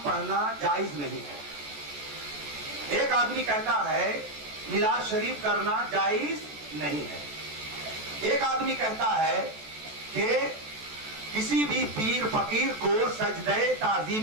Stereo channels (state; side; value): late; left; 14 ms